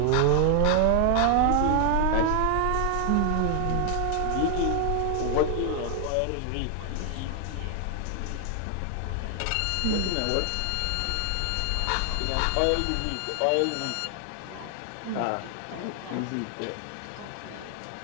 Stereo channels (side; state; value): both; different; correlation 0.00